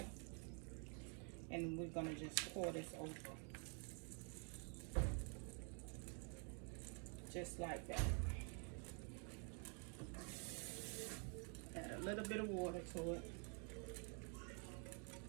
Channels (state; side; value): quieter; left; 39.5 dB